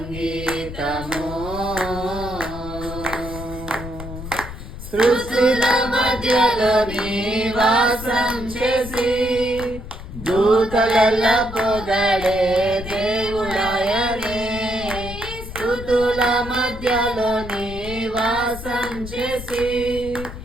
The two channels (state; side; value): noise; left; rumble, 11 dB below the sound